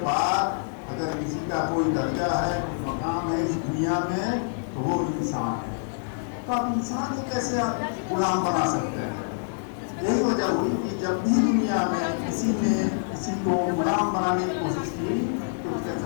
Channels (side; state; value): right; silent; digital silence